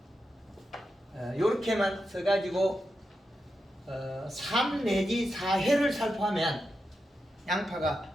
요렇게만 써가지고 3 내지 4회를 살포하면 양파가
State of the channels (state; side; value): normal; both; correlation 0.88